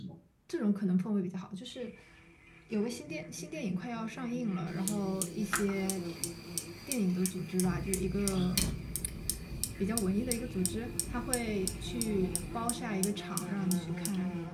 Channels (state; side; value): identical; both; correlation 1.00